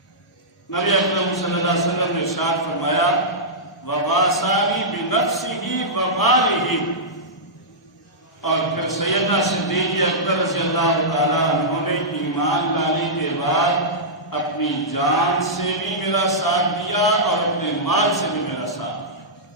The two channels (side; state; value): both; normal; correlation -0.13